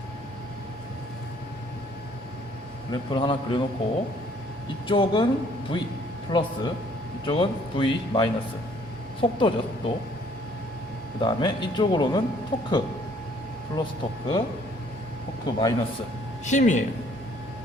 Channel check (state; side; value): normal; both; correlation 0.61